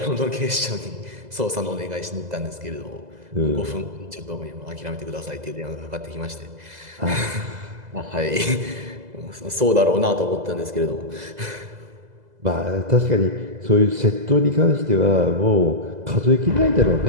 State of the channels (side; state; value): left; late; 2.0 ms